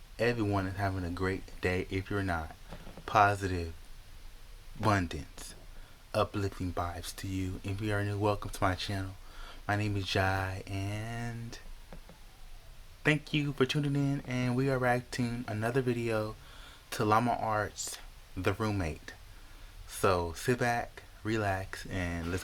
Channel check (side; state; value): both; identical; correlation 1.00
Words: everyone is having a great day. If you're not, positive, abundance, uplifting vibes to you. If you are new, welcome to my channel. My name is Jai, and thank you for tuning in. And we are reacting another video to Llama Art's The Roommate. So sit back, relax, and let's